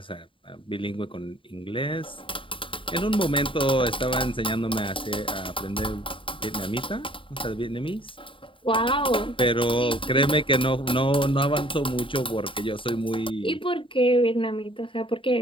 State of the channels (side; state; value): right; late; 0.25 ms